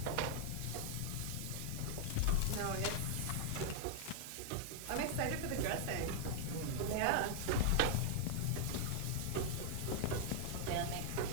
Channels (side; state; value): both; different; correlation 0.00